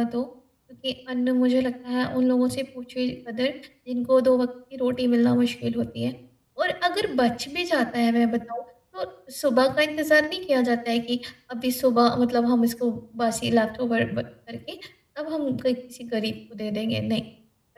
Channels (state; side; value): identical; both; correlation 1.00